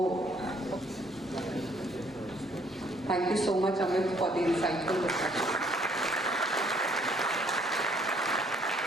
thank you so much, Amit, for the insightful discussion.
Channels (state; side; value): normal; both; correlation 0.64